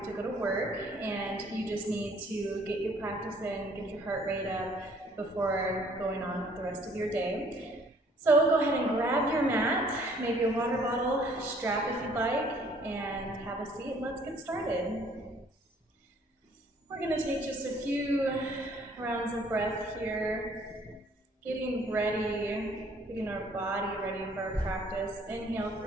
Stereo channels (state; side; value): normal; both; correlation 0.60